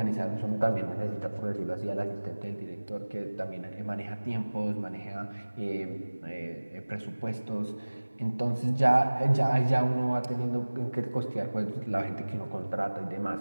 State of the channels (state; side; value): inverted; both; correlation -1.00